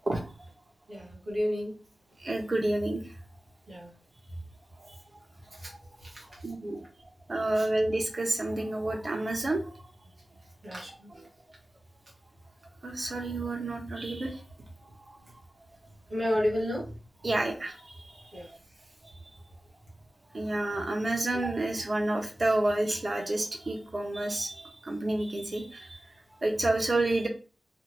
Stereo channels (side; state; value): both; normal; correlation 0.96